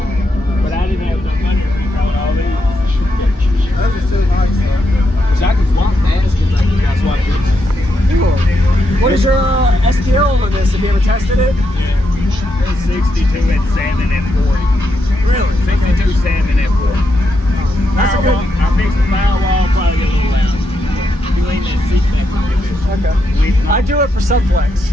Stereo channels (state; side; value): normal; both; correlation 0.82